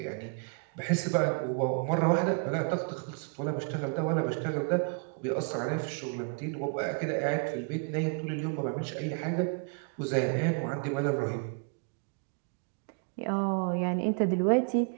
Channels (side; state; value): left; quieter; 37.6 dB